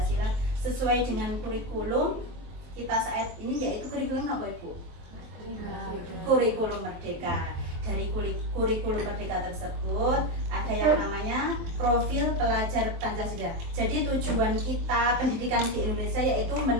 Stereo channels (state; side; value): late; left; 23 ms